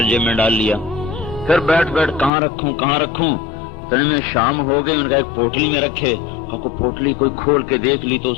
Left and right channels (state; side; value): drops out; right; at 2.3 s